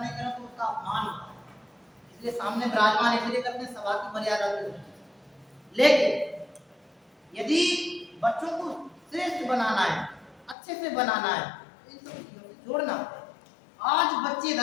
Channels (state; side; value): drops out; right; at 10.6 s